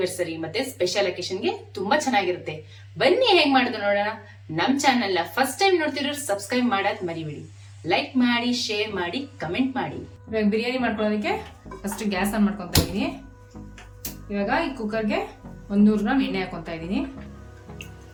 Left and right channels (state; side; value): identical; both; correlation 1.00